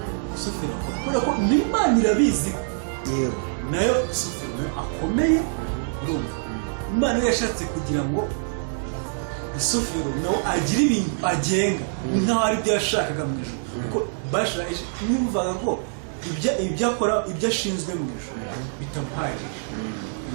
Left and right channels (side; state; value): left; silent; digital silence